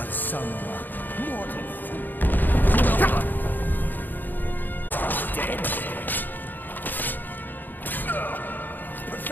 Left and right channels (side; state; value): right; late; 0.088 ms